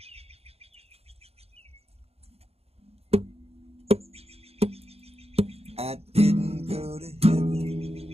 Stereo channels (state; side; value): late; left; 0.29 ms